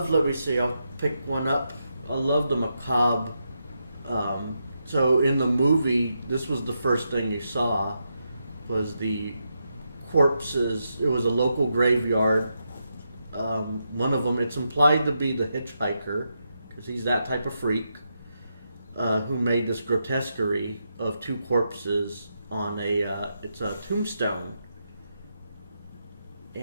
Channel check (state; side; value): inverted; both; correlation -0.84